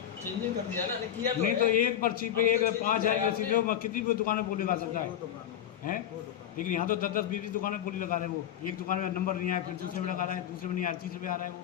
चेंजिंग कर दिया ना, किया तो नहीं है। तो एक पर्ची पे एक 5,000 रसीद है, वो कितनी कोई दुकान में बोली लगा सकता है? 2 दुकान हैं? लेकिन यहाँ तो 10-10, 20 दुकानें बोली लगा रहे हैं। वो एक दुकान में नंबर नहीं आया, फिर दूसरे में लगा रहा है, दूसरे में नहीं आया, तीसरे में आ रहा है वो।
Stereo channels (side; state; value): right; quieter; 10.4 dB